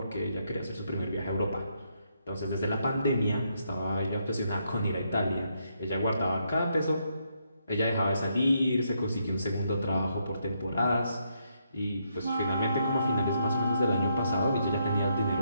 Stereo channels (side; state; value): both; inverted; correlation -0.77